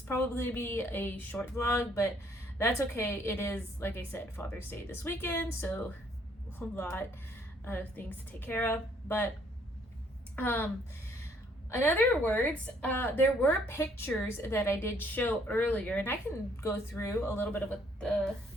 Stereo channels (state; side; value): normal; both; correlation 0.65